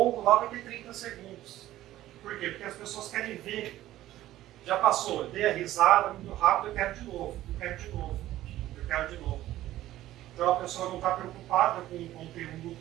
lá vai ter 30 segundos. Por quê? Porque as pessoas querem ver. Já passou, eu dei a risada muito rápido, eu quero de novo, eu quero de novo, eu quero de novo. Então a pessoa não está preocupada com o conteúdo,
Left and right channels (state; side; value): quieter; left; 14.4 dB